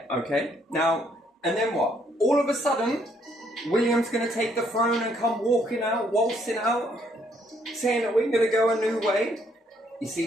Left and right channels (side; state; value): both; normal; correlation 0.69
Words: okay? Now, and then what? All of a sudden, William's going to take the throne and come walking out, waltzing out, saying that we're going to go a new way. You